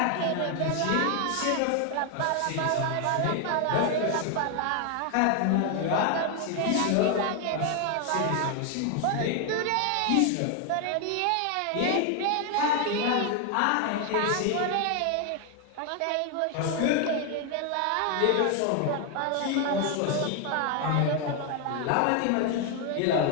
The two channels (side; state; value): both; different; correlation 0.01